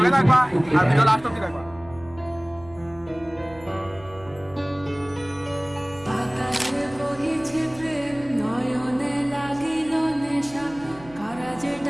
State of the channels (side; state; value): right; noise; hum, 21 dB below the sound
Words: থাকবা আর ভিডিও লাস্ট অব্দি থাকবা।